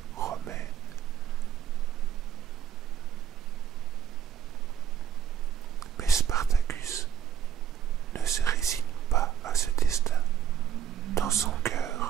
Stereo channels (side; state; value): left; quieter; 9.0 dB